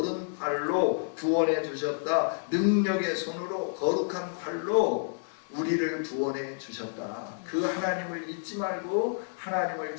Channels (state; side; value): silent; right; 58 dB below the other